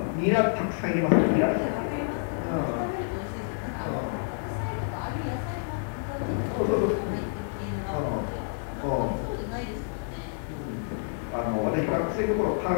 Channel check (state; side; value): silent; right; digital silence